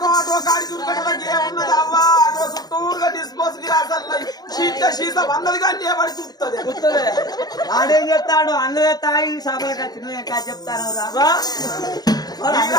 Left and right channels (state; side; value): late; right; 0.19 ms